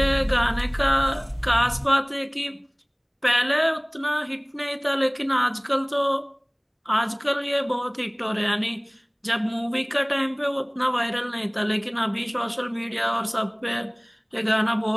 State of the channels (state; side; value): identical; both; correlation 1.00